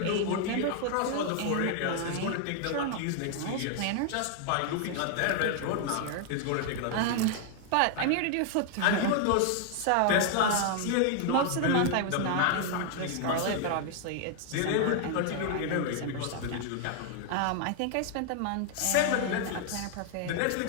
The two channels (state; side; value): different; both; correlation 0.00